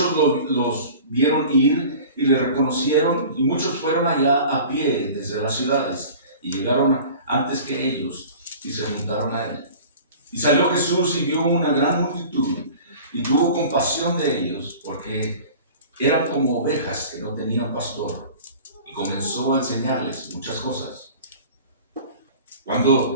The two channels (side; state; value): both; inverted; correlation -0.42